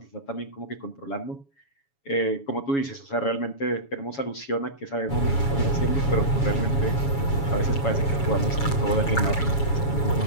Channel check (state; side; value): late; right; 7.2 ms